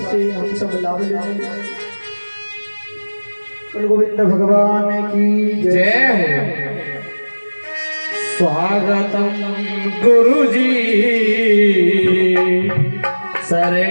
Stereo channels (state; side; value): inverted; both; correlation -1.00